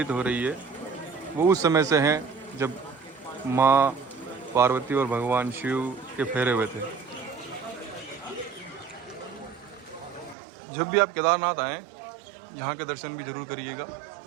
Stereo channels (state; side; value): drops out; left; at 10.4 s